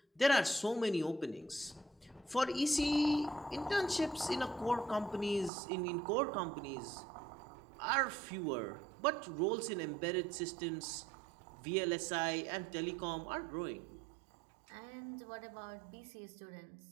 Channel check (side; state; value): left; drops out; at 5.5 s